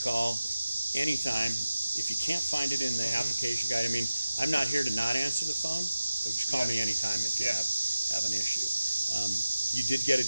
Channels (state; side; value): inverted; both; correlation -0.95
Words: anytime. If you can't find it in the application guide, I mean, I'm not here to not answer the phone, so just call me anytime if you have an issue. You did get a